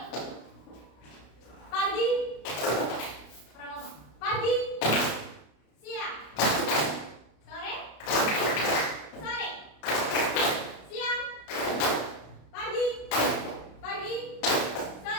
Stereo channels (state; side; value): late; right; 33 ms